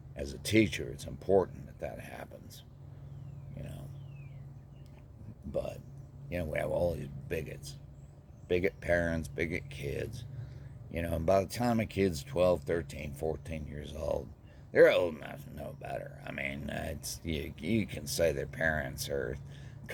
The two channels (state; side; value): identical; both; correlation 1.00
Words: as a teacher, it's important that happens, But, we have all these bigots. Bigot parents, bigot kids. And by the time a kid's 12, 13, 14 years old, they're old enough to know better. I mean, you can say their parents are